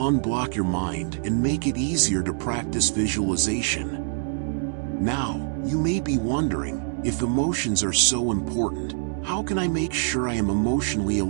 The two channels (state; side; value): silent; left; digital silence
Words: your mind and make it easier to practice visualization. Now, you may be wondering, if emotions are so important, how can I make sure I am emotionally